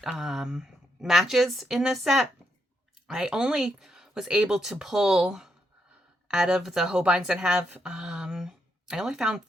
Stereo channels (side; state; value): both; normal; correlation 0.79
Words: matches in this set. I only was able to pull out of the Holbeins that have I only found